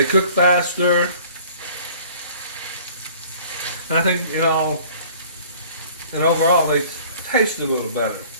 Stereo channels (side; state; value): both; inverted; correlation -0.50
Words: cook faster. And I think, and overall they taste a little better.